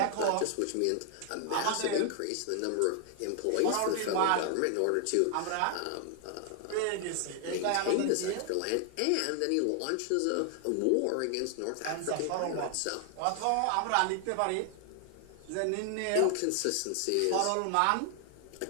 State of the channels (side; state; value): both; different; correlation 0.00